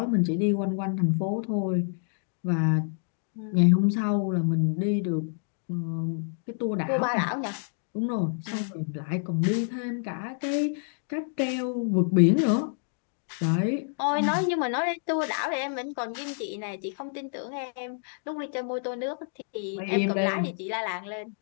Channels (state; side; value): silent; right; digital silence